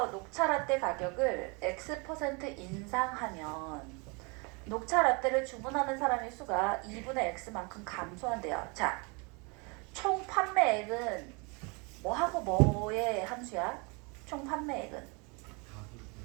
녹차 라떼 가격을 X% 인상하면 녹차 라떼를 주문하는 사람의 수가 2분의 X만큼 감소한대요. 자, 총 판매액은 뭐하고 뭐의 함수야? 총 판매액은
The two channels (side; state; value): left; quieter; 30.7 dB